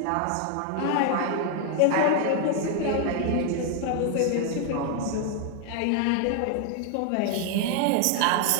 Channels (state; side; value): different; both; correlation 0.00